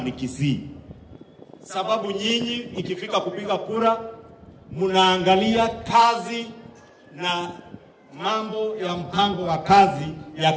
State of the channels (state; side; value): identical; both; correlation 1.00